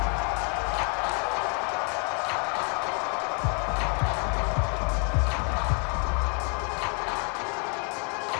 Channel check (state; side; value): quieter; right; 37.1 dB